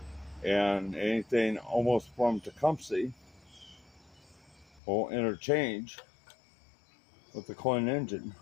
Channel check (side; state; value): right; drops out; at 4.8 s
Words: and anything almost from Tecumseh will interchange with the Clinton engine.